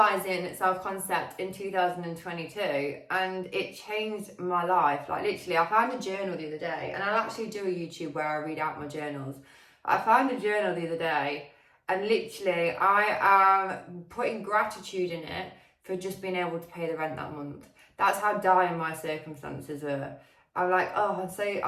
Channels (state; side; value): identical; both; correlation 1.00